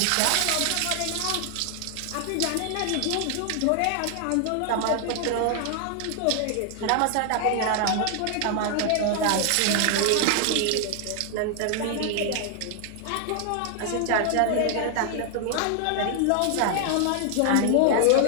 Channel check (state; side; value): different; both; correlation 0.00